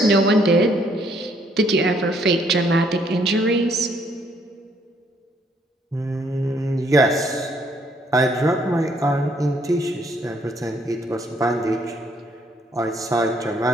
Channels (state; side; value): normal; both; correlation 0.68